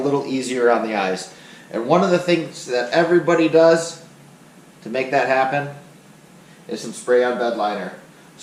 easier on the eyes. And one of the things that everybody does to make that happen is some spray on Bedliner.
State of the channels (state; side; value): identical; both; correlation 1.00